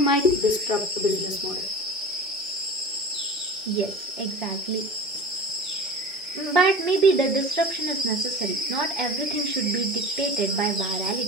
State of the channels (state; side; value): normal; both; correlation 0.34